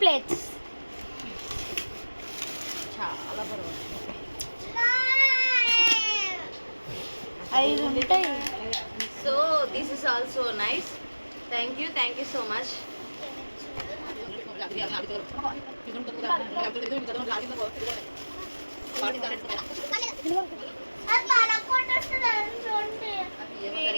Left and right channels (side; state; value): both; inverted; correlation -1.00